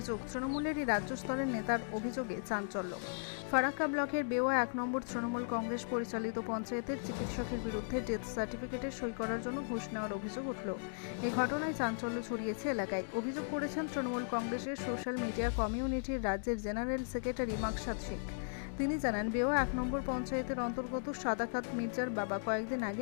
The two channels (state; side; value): silent; right; digital silence